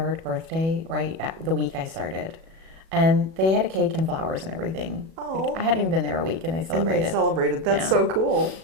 birthday right at the week I started. And they had a cake and flowers and everything. Oh. I hadn't even been there a week, and they celebrated. And they celebrated. That's Yeah. so cool.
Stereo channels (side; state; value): left; late; 37 ms